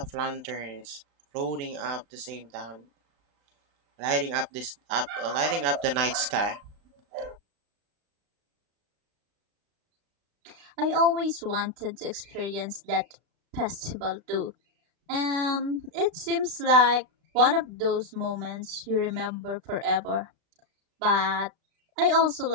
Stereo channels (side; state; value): left; late; 35 ms